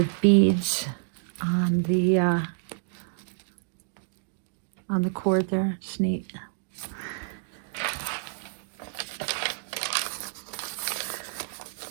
beads on the cord there. It's neat.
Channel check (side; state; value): left; silent; digital silence